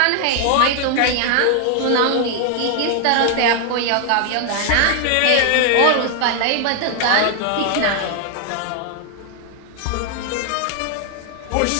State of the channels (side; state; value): both; different; correlation 0.00